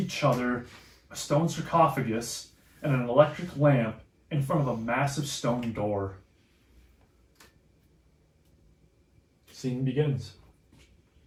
other, a stone sarcophagus, and an electric lamp in front of a massive stone door. Scene begins.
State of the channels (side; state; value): both; identical; correlation 1.00